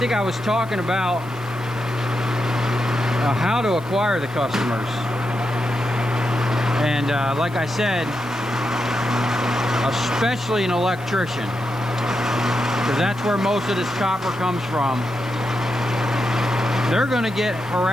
I was talking about how to acquire the customers. And like I said, especially an electrician, because that's where most of this copper comes from. They're gonna get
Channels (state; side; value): noise; left; hiss, 25 dB below the sound